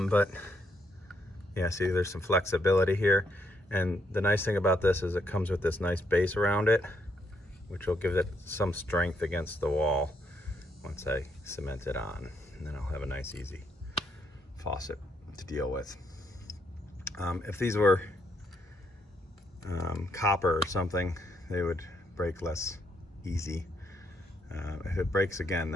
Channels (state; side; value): normal; both; correlation 0.75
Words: yeah, see, there's some flexibility here. And the nice thing about this is it comes with this nice base around it, which will give it some strength against the wall once I cement it on. And then I'll have a nice, easy faucet to deal with. If these were copper or something, they would break less easy. If it breaks again,